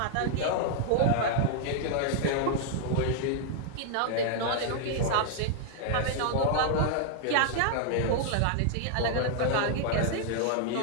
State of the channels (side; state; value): both; different; correlation -0.01